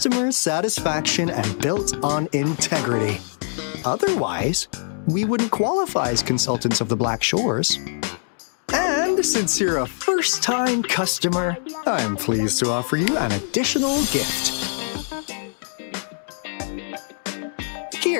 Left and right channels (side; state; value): right; silent; digital silence